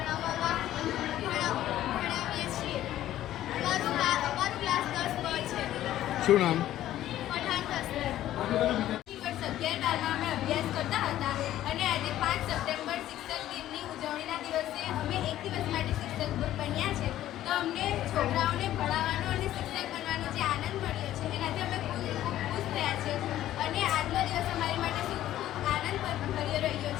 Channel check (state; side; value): quieter; right; 13.2 dB